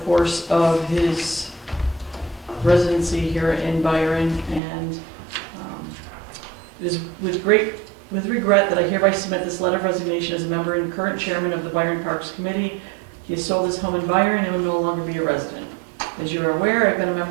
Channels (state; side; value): drops out; left; at 4.6 s